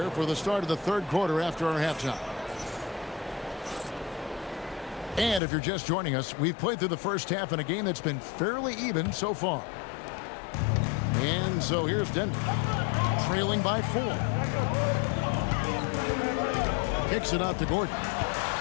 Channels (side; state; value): right; drops out; at 5.4 s